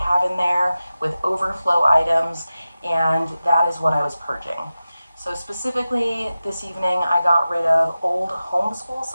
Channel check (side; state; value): both; inverted; correlation -0.94